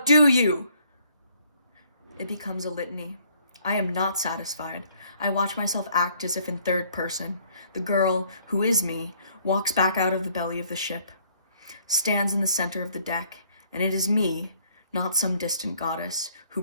you! It becomes a litany. I am not satisfied. I watch myself act as if in third person. The girl, who is me, walks back out of the belly of the ship, stands in the center of the deck, and it is me, not some distant goddess, who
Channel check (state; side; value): inverted; both; correlation -0.63